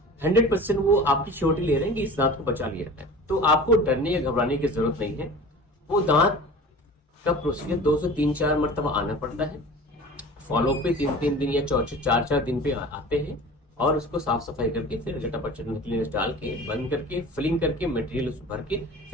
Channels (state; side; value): normal; both; correlation 0.39